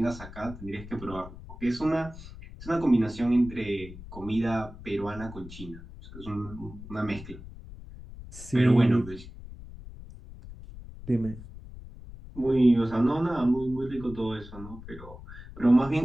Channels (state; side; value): noise; left; rumble, 15 dB below the sound